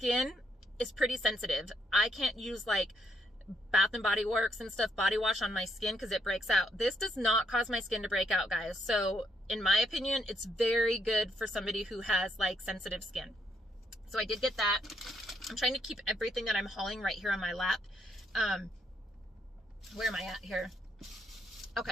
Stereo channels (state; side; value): normal; both; correlation 0.74